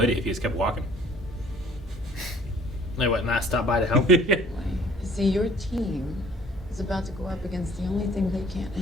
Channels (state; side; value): normal; both; correlation 0.55